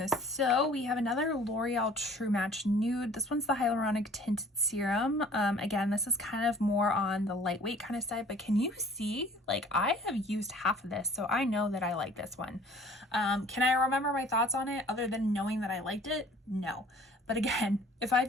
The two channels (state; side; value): normal; both; correlation 0.51